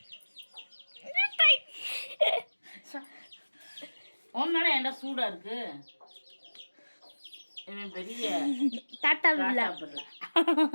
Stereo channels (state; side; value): inverted; both; correlation -1.00